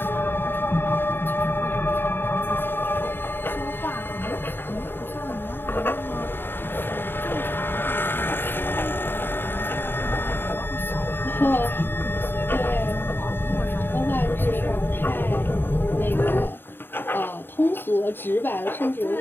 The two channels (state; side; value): late; right; 0.10 ms